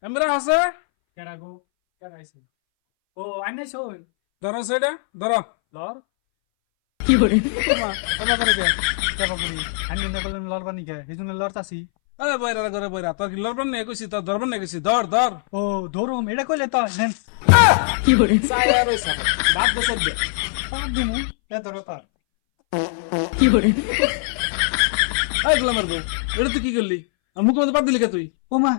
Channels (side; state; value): right; silent; 63 dB below the other